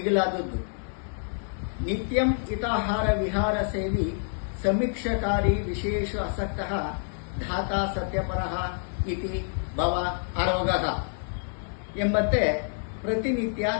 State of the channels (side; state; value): right; silent; 60 dB below the other